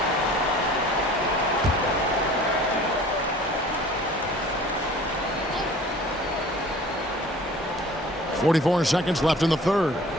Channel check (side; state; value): both; normal; correlation 0.47